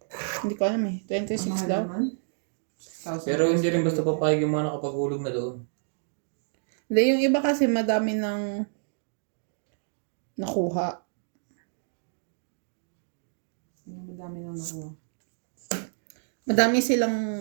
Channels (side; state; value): left; silent; digital silence